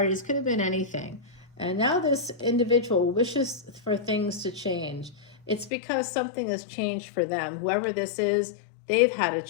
could have been anything. And now this individual wishes for things to change. It's because something has changed for them. Whoever this is, they've had a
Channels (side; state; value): right; drops out; at 5.7 s